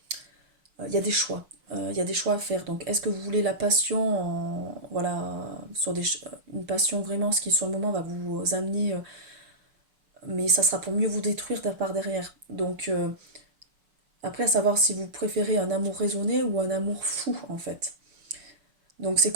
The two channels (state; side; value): late; left; 6.3 ms